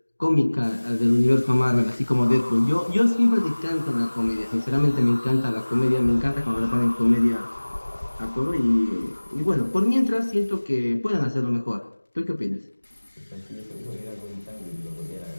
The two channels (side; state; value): both; inverted; correlation -1.00